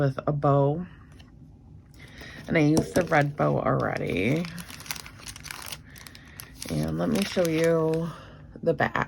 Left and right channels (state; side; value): identical; both; correlation 1.00